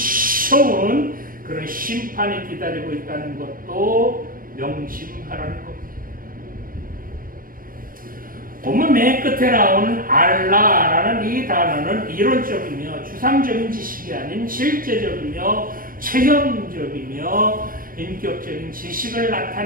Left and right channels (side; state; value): left; late; 0.41 ms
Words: 그런 심판이 기다리고 있다는 것도 명심하라는 겁니다. 본문 맨 끝에 나오는 알라라는 이 단어는 이론적이며 추상적인 지식이 아닌 실제적이며 체험적이며 인격적인 지식을